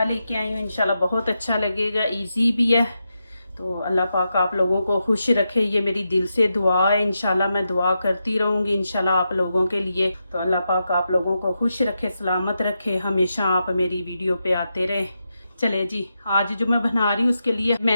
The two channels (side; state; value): both; inverted; correlation -0.87